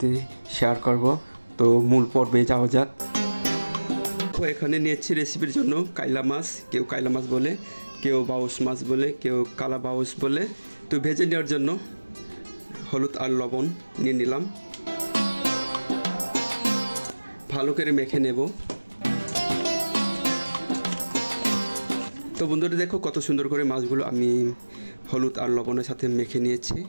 শেয়ার করব। তো মূল পর্বে যাওয়া যাক। এখানে নিয়েছি রেসিপির জন্য কাইলা মাছ, কেউ কাইলা মাছ বলে, কেউ বাউস মাছ বলে, কেউ কালা বাউস বলে। তো ভেজে নেওয়ার জন্য হলুদ আর লবণ নিয়ে নিলাম, ভালো করে মেখে নেব। তো বন্ধুরা দেখো কত সুন্দর করে মাছগুলো আমি হলুদ আর লবণের সাথে মেখে নিয়েছি,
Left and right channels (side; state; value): both; inverted; correlation -1.00